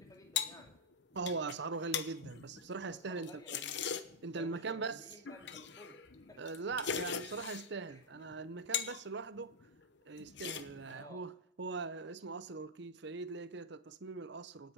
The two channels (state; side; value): normal; both; correlation -0.05